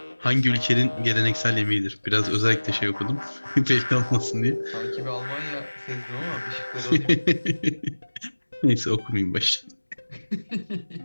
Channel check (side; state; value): both; inverted; correlation -1.00